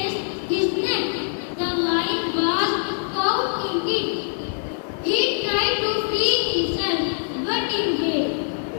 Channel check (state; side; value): silent; right; digital silence